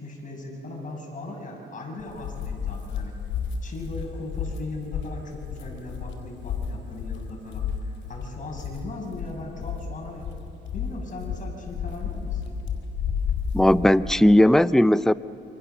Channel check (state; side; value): normal; both; correlation 0.90